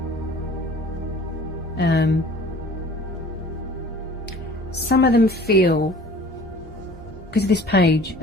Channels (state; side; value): normal; both; correlation 0.47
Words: Some of them feel, because of this page,